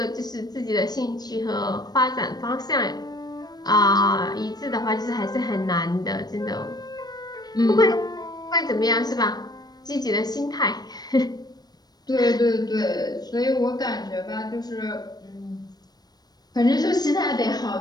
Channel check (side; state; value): right; late; 0.19 ms